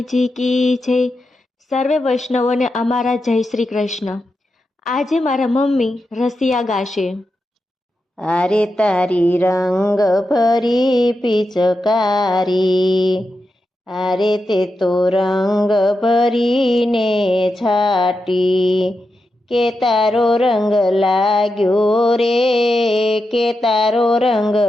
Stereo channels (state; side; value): normal; both; correlation 0.88